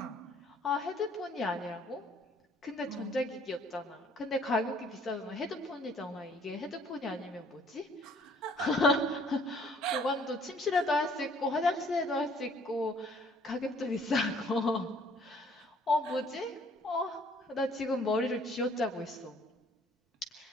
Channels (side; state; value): both; normal; correlation 0.59